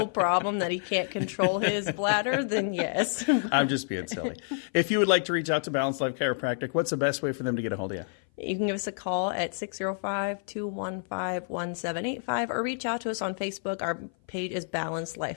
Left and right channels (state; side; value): silent; right; 56 dB below the other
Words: problem that he can't control his bladder, then yes. I'm just being silly. If you would like to reach out to Balanced Life Chiropractic, what's the best way for them to get a hold of you? You can give us a call at 605-215-1785 or reach out to us on Facebook. Our page is Balanced